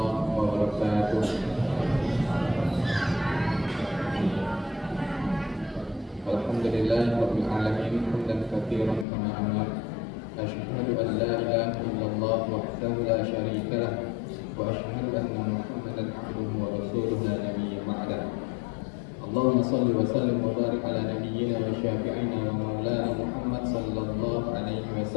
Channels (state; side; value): drops out; right; at 9.1 s